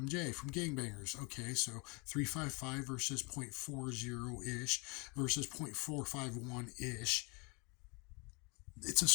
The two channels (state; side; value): quieter; right; 30.4 dB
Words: from gangbangers. Okay, so 355 versus .40-ish versus .451-ish. It's a